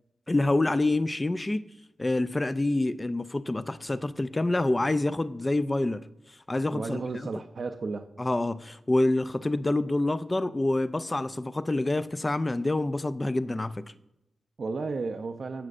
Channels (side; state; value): both; normal; correlation 0.98